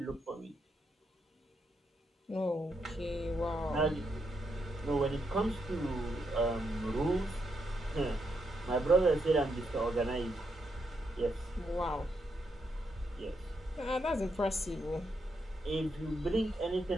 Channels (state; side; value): normal; both; correlation 0.80